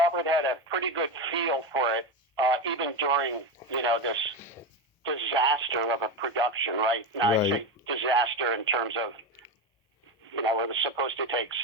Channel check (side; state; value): both; normal; correlation 0.16